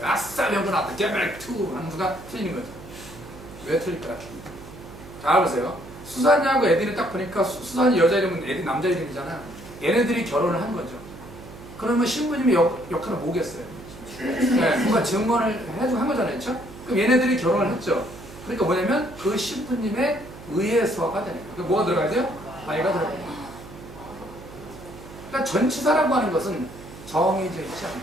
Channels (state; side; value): noise; right; hum, 16 dB below the sound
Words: 아싸 명분 나왔다. get married to 하는 수가 틀리는 거죠. 왜 틀릴까요? 잘 보세요. 수산이하고 에디는 딱 보니까 수산이 여자 이름은 에디 남자 이름이잖아요. 얘네들이 결혼을 한 거죠. 그러면 신부님의 역할은 뭐겠어요? 네, 뭔가 증언을 한 거잖아요. 그렇죠? 그럼 얘네들이 결혼을 했죠. 그러니까 뭐냐면 그 신부님의 의해서가 되는 거예요. 뭐가 들어가야 돼요? 아이가 들어가야 돼요. 그러니까 전치사라고 하는 것은 정해져 있지